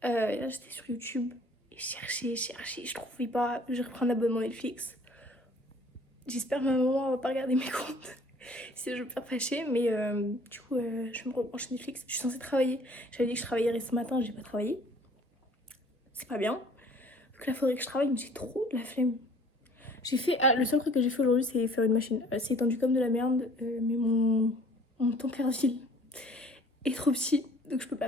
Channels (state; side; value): normal; both; correlation 0.54